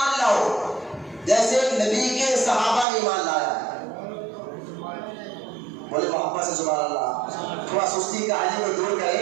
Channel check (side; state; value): left; drops out; at 2.9 s